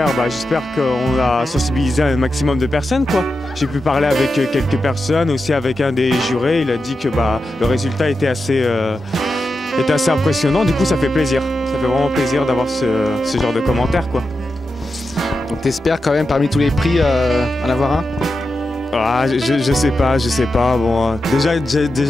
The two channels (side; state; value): both; normal; correlation 0.89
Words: qu'on a sensibilisé un maximum de personnes, quoi. J'ai pu parler avec quelques personnes, aussi avec un des jurés. Il a dit que le résultat était assez impressionnant. Du coup, ça fait plaisir. Ça fait vraiment plaisir d'avoir ce genre de commentaires, quoi. Donc t'espères quand même parmi tous les prix en avoir un? Je sais pas. Bon, déjà